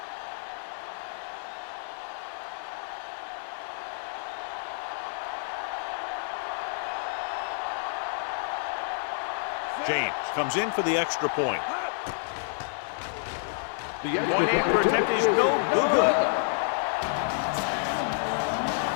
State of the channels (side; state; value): right; silent; digital silence